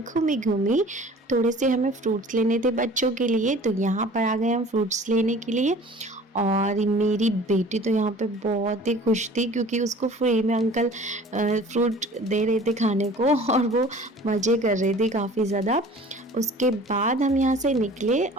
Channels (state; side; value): normal; both; correlation 0.46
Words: घूमी घूमी। थोड़े से हमें फ्रूट्स लेने थे बच्चों के लिए, तो यहाँ पर आ गए हम फ्रूट्स लेने के लिए। और मेरी बेटी तो यहाँ पे बहुत ही खुश थी क्योंकि उसको फ्री में अंकल फ्रूट दे रहे थे खाने को और वो मज़े कर रही थी काफ़ी ज़्यादा। उसके बाद हम यहाँ से निकले